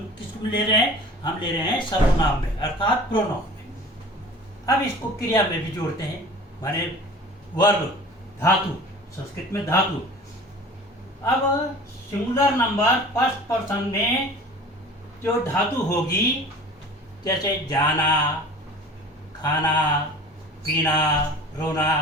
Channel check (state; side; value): normal; both; correlation 0.42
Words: किसको ले रहे हैं, हम ले रहे हैं सर्वनाम में, अर्थात प्रोनाउन में। अब इसको क्रिया में भी जोड़ते हैं, माने वर्ब, धातु, संस्कृत में धातु। अब सिंगुलर नंबर फर्स्ट पर्सन में जो धातु होगी, जैसे जाना, खाना, पीना, रोना,